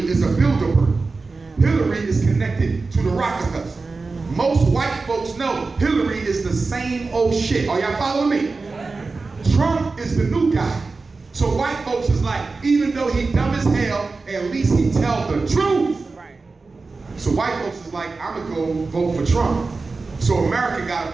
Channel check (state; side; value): quieter; left; 3.9 dB